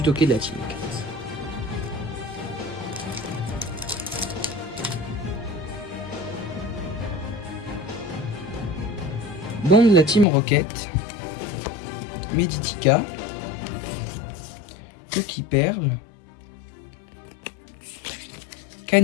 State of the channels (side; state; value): right; drops out; at 10.2 s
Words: de la Team Rocket. Bon de la Team Rocket, Meditica, Coquille Perle,